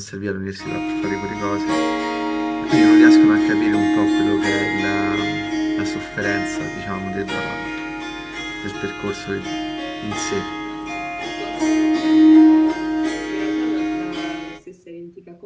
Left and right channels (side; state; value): both; identical; correlation 1.00